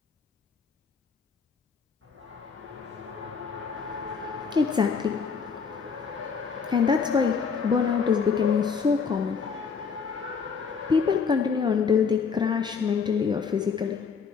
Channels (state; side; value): quieter; right; 5.8 dB